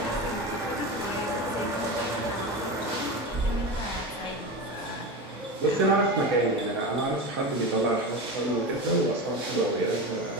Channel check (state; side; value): normal; both; correlation 0.24